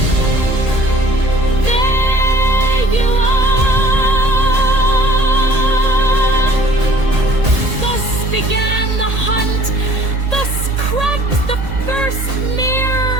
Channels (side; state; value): left; late; 1.8 ms